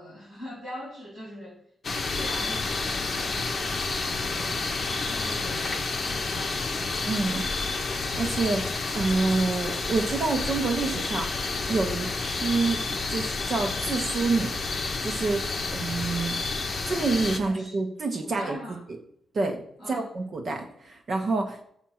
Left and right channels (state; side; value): normal; both; correlation 0.84